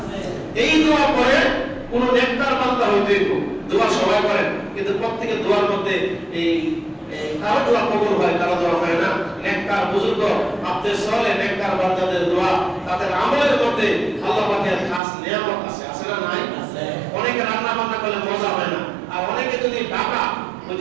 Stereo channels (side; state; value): left; drops out; at 15.0 s